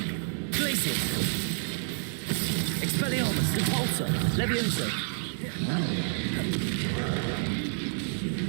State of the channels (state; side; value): silent; left; digital silence